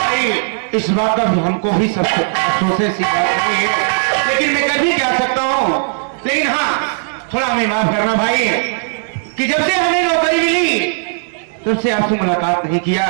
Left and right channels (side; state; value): left; silent; digital silence